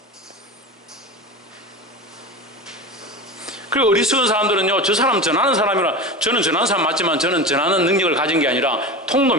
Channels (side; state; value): both; normal; correlation 0.27